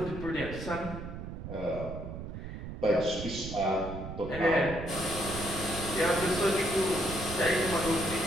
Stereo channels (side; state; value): right; noise; rumble, 8 dB below the sound